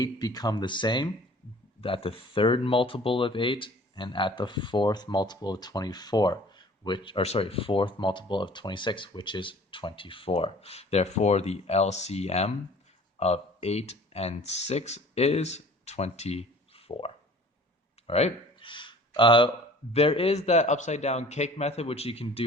become the same? At the third multiple of 8 and at the fourth multiple of 24. Fourth multiple of 26, which is 24. Therefore, the LCM of 8 and 6 is 24. All right? There is that upside down cake method, which you can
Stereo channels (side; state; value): both; normal; correlation 0.49